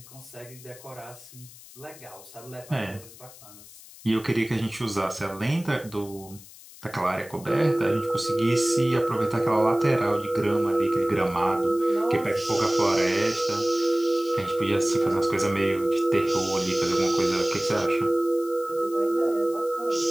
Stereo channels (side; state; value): left; noise; hiss, 19 dB below the sound